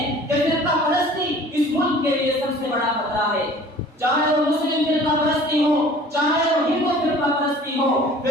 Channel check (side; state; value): both; normal; correlation 0.48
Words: कि फिरका परस्ती इस मुल्क के लिए सबसे बड़ा खतरा है। चाहे वो मुस्लिम फिरका परस्ती हो, चाहे वो हिंदू फिरका परस्ती हो,